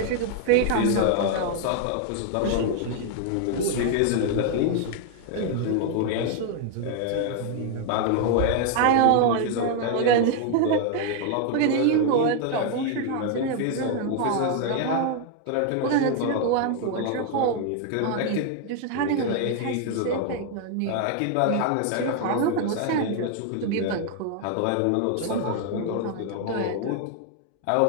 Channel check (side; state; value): both; different; correlation 0.00